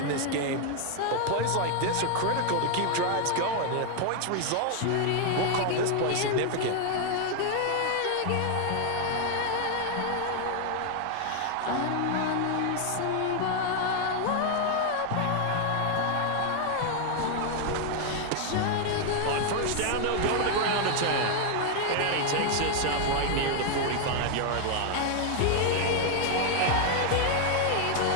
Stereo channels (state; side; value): different; both; correlation 0.00